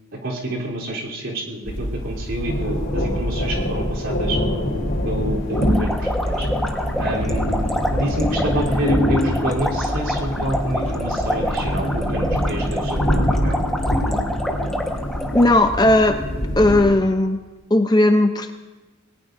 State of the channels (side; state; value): both; normal; correlation 0.70